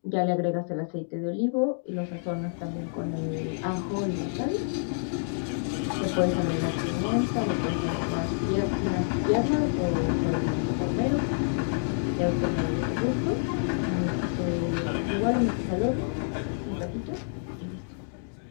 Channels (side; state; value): right; silent; digital silence